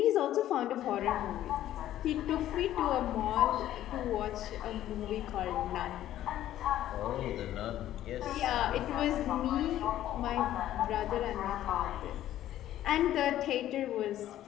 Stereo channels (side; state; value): right; quieter; 12.8 dB